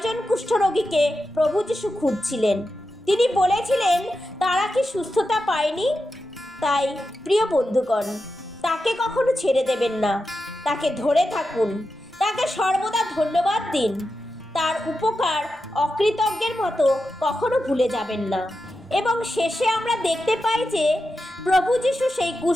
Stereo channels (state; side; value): normal; both; correlation 0.90